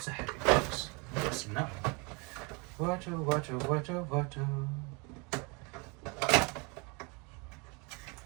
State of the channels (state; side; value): quieter; left; 30.3 dB